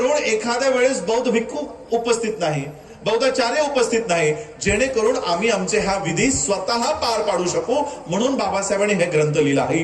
एखाद्या वेळेस बौद्ध भिक्खू उपस्थित नाही, बौद्धाचार्य उपस्थित नाही, जेणेकरून आम्ही आमचे हा विधी स्वतः पार पाडू शकू. म्हणून बाबासाहेबांनी हे ग्रंथ लिहिला,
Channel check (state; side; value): identical; both; correlation 1.00